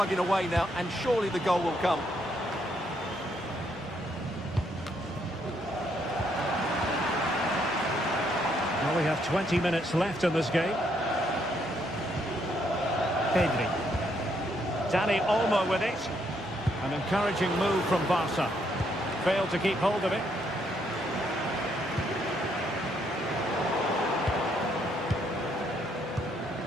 away now, and surely the goal will come. Well, we have 20 minutes left in this game. Pedri. Dani Olmo with it. An encouraging move from Barca. Failed to keep hold of it.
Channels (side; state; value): both; normal; correlation 0.73